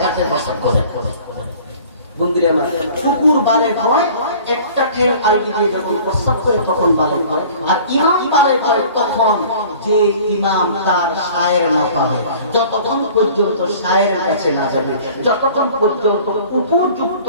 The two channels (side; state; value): both; inverted; correlation -0.48